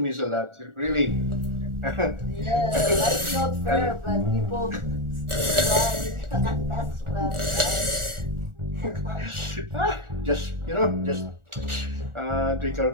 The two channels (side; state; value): left; late; 1.4 ms